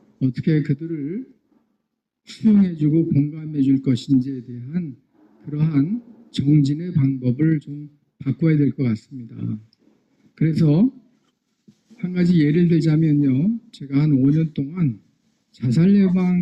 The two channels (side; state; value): both; identical; correlation 1.00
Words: 어떻게 그들을 수용해주고 공감해 줄 것인지에 대한 그러한 정진의 방법을 좀 바꿔야 될 것 같습니다. 그래서 한 가지 예를 들자면요. 제가 한 5년 동안 자살